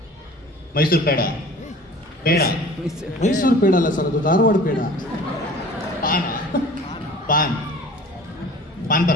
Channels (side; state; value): both; normal; correlation 0.44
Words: ಪೇಡ. ಮೈಸೂರು ಪೇಡ ಅಲ್ಲ ಸರ್, ಅದು ಧಾರವಾಡ ಪೇಡ. ಪಾನ್